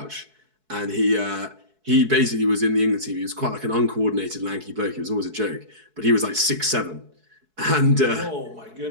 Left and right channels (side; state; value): left; late; 4.7 ms